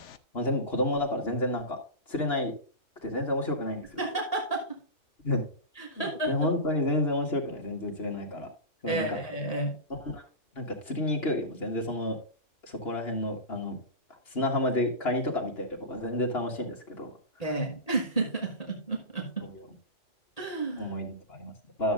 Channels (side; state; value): right; late; 1.8 ms